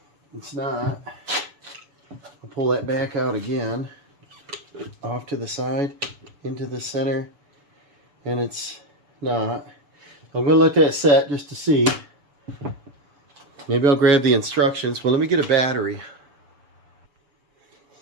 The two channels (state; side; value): late; left; 7.0 ms